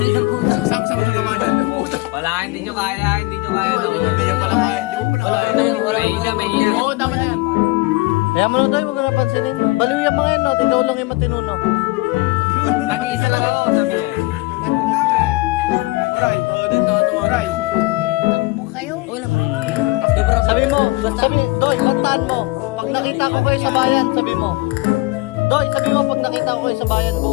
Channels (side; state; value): right; quieter; 22.3 dB